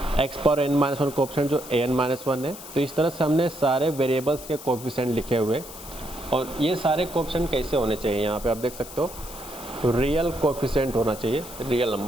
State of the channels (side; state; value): left; noise; hiss, 14 dB below the sound